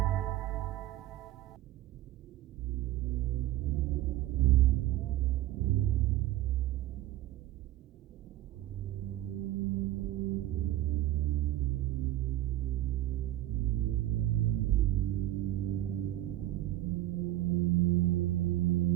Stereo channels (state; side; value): quieter; left; 14.4 dB